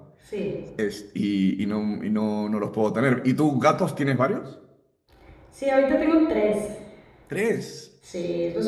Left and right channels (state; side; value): identical; both; correlation 1.00